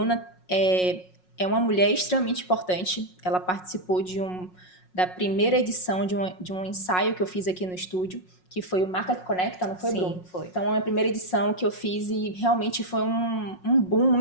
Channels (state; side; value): late; right; 5.5 ms